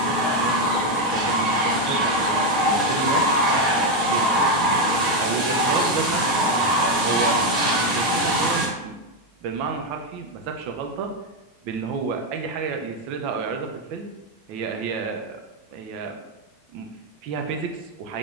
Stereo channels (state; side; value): normal; both; correlation 0.06